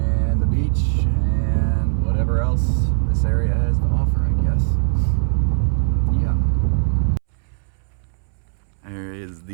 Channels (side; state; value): left; silent; 66 dB below the other